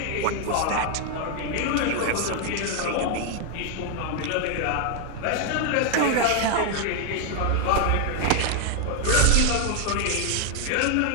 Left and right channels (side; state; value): both; different; correlation 0.00